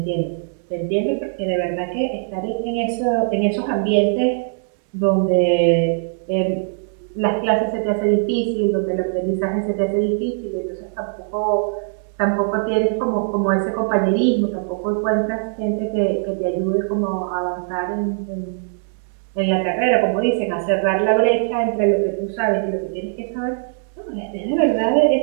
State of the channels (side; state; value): left; silent; digital silence